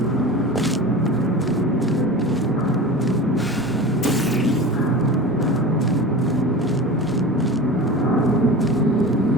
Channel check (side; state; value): both; normal; correlation 0.32